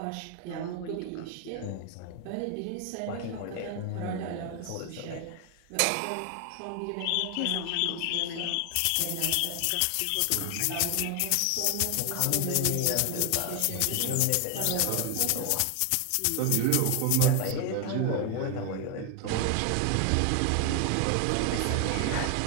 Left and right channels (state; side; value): different; both; correlation 0.00